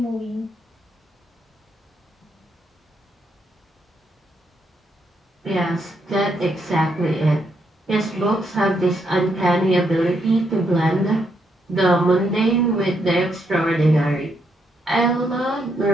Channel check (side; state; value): both; normal; correlation 0.77